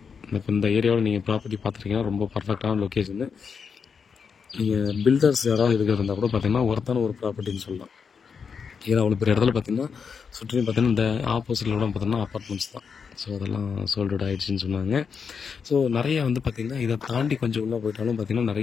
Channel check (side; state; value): right; quieter; 6.1 dB